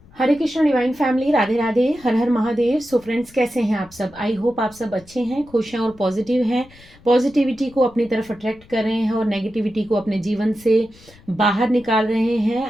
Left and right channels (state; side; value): noise; left; rumble, 25 dB below the sound